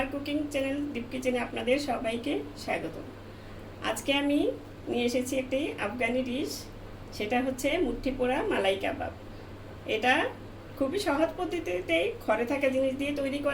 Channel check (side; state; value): both; identical; correlation 1.00